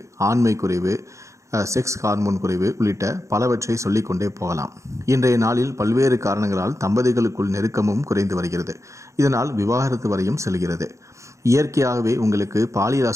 ஆண்மை குறைவு, செக்ஸ் ஹார்மோன் குறைவு உள்ளிட்ட பலவற்றை சொல்லிக்கொண்டே போகலாம். இன்றைய நாளில் பல்வேறு காரணங்களால் தம்பதிகளுக்குள் நெருக்கமும் குறைந்து வருகிறது. இதனால் விவாகரத்து வரையும் செல்கிறது. இயற்கையாகவே உங்களுக்கு பாலியல்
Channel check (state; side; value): late; left; 0.15 ms